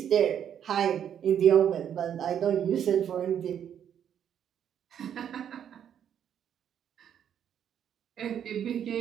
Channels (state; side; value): quieter; left; 9.2 dB